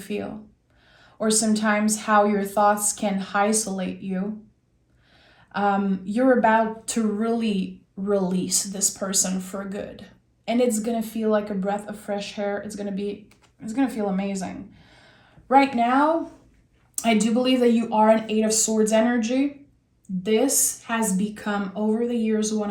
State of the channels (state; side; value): identical; both; correlation 1.00